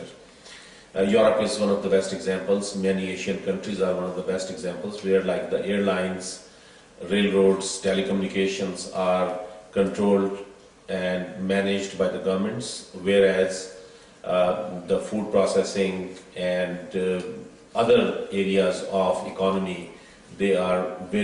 Europe is one of the best examples. Many Asian countries are one of the best examples where like the airlines, railroads, telecommunications are controlled and managed by the governments, whereas the food processing and other areas of economy, they are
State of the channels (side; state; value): both; identical; correlation 1.00